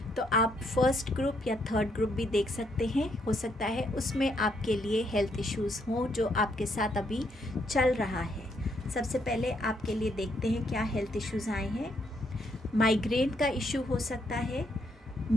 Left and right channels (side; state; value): both; normal; correlation 0.74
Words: तो आप फर्स्ट ग्रुप या थर्ड ग्रुप भी देख सकते हैं। हो सकता है उसमें आपके लिए हेल्थ इश्यूज़ हों जो आपके साथ अभी चल रहा है। सबसे पहले आपके लिए देखते हैं क्या हेल्थ इश्यूज़ आए हैं। माइग्रेन का इशू हो सकता है,